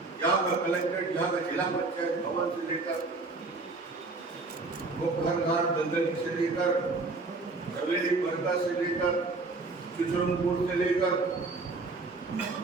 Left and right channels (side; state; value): left; quieter; 3.6 dB